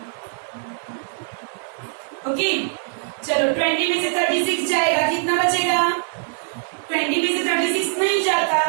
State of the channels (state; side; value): silent; left; digital silence